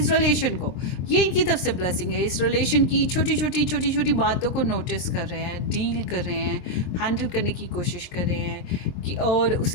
रिलेशन को। ये इनकी तरफ से ब्लेसिंग है। इस रिलेशन की छोटी छोटी बातों को नोटिस कर रहे हैं, डील कर रहे हैं, हैंडल करने की कोशिश कर रहे हैं कि, और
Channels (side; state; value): right; late; 23 ms